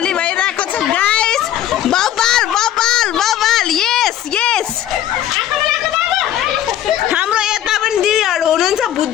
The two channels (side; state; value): right; quieter; 11.7 dB